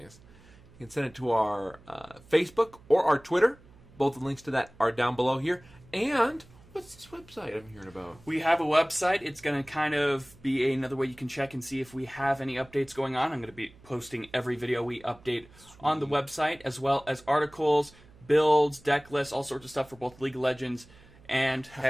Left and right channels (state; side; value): noise; right; hum, 25 dB below the sound